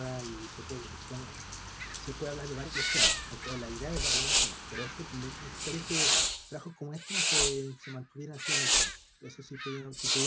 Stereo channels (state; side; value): identical; both; correlation 1.00